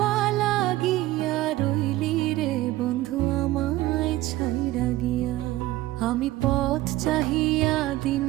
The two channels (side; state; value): left; quieter; 16.6 dB